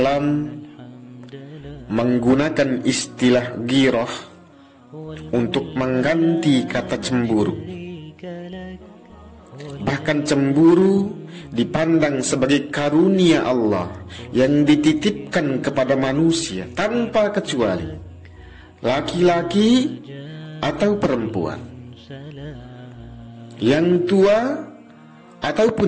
menggunakan istilah ghirah untuk mengganti kata cemburu. Bahkan cemburu dipandang sebagai karunia Allah yang dititipkan kepada manusia tanpa kecuali, laki-laki atau perempuan, yang tua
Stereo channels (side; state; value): both; identical; correlation 1.00